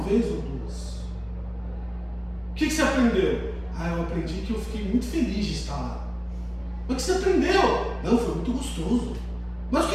ou duas. O que você aprendeu? Eu aprendi que eu fiquei muito feliz de estar lá. Mas o que você aprendeu? Não, foi muito gostoso. Mas o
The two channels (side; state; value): both; identical; correlation 1.00